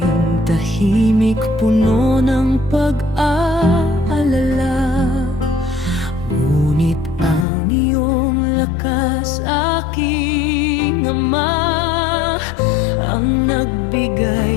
tahimik puno ng pag-aalala. Ngunit ang iyong lakas, aking Ama, ang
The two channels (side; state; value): right; drops out; at 7.5 s